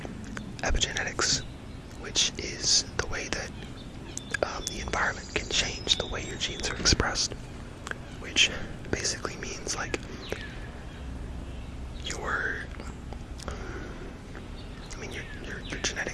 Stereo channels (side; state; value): both; identical; correlation 1.00